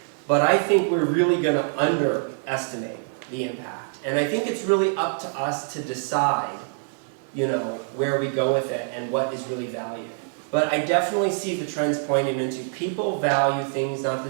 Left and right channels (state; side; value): silent; left; digital silence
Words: But I think we're really going to underestimate the impact. And I think it's really up to us to decide, where we go with it and what is really valued. But I definitely see the trends pointing into people value things not